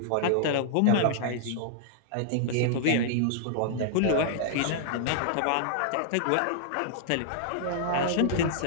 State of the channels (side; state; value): both; different; correlation -0.01